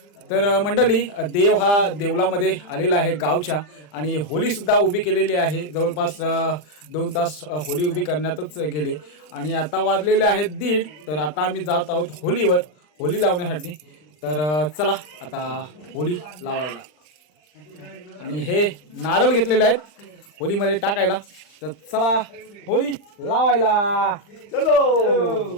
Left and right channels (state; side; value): late; right; 40 ms